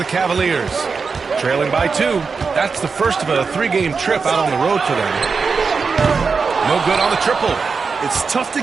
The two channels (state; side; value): quieter; left; 5.0 dB